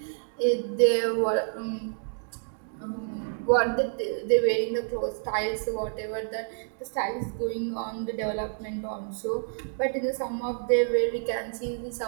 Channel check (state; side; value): silent; left; digital silence